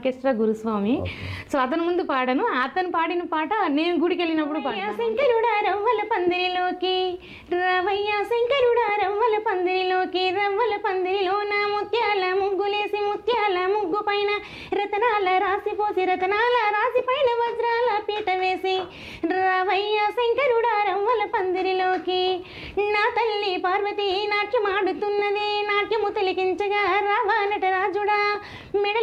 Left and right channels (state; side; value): identical; both; correlation 1.00